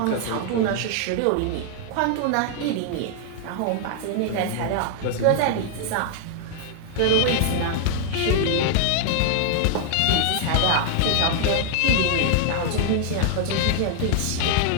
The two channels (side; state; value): both; different; correlation 0.00